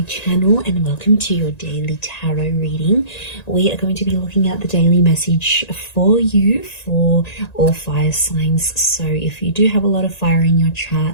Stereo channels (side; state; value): right; late; 1.9 ms